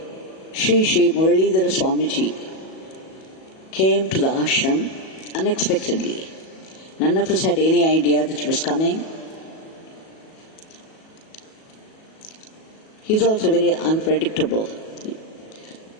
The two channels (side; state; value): right; late; 37 ms